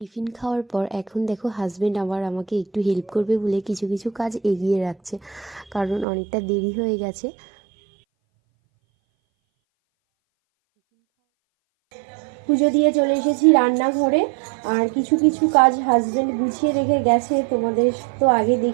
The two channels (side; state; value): left; drops out; at 6.1 s